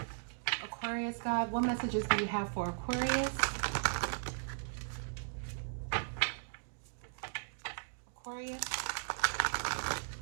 Aquarius, God, what messages do you have for Aquarius? Aquarius.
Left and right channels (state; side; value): silent; left; digital silence